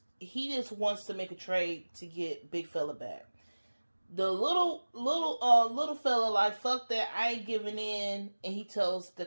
he just wants to make a trade to get big fella back. The little fella like, fuck that, I ain't giving in, and he tells the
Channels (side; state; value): both; inverted; correlation -1.00